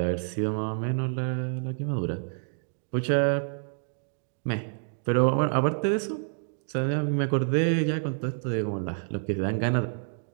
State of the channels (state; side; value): silent; left; digital silence